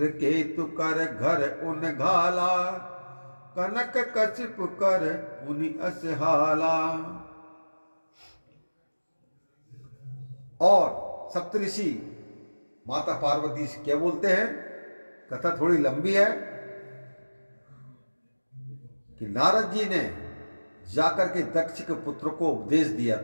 कर घर उन घाला, कनक कशिप कर पुनि असहाला। और सप्तऋषि माता पार्वती से क्या बोलते हैं? कथा थोड़ी लंबी है कि नारद जी ने जाकर के दक्ष के पुत्र को उपदेश दिया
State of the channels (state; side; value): inverted; both; correlation -1.00